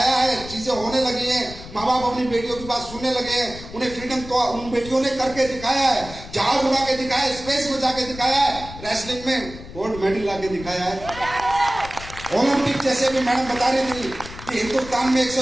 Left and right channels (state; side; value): noise; left; rumble, 14 dB below the sound